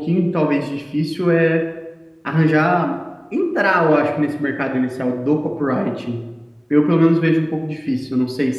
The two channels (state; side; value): identical; both; correlation 1.00